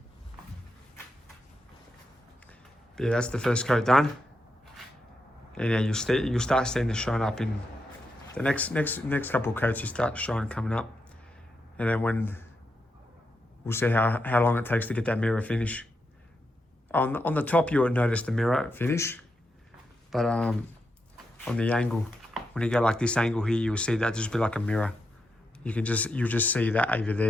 But yeah, that's the first coat done. And yeah, you'll start seeing the shine up in the next couple of coats. You start shine coming up, and then when we'll see how long it takes to get that mirror finish. On the top, you will notice the mirror finish, but on the angle, when you go like this angle here, you will see that just be like a mirror. You'll just see that over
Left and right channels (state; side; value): normal; both; correlation 0.84